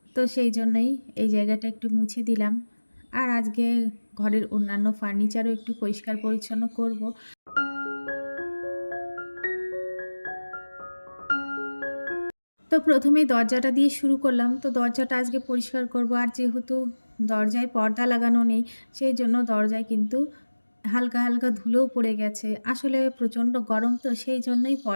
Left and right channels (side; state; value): both; inverted; correlation -1.00